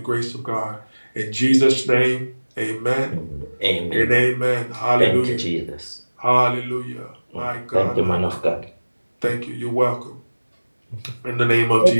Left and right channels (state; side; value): inverted; both; correlation -1.00